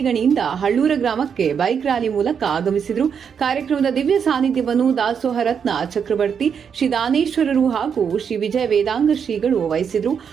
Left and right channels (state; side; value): quieter; left; 7.1 dB